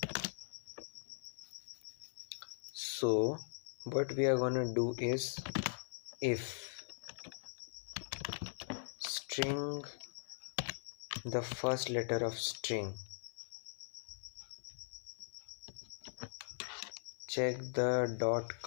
So what we are gonna do is, if string, the first letter of string, check the dot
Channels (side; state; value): right; silent; 51 dB below the other